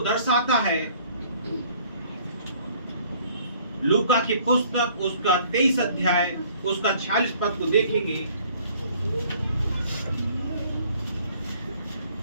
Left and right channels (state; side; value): inverted; both; correlation -0.57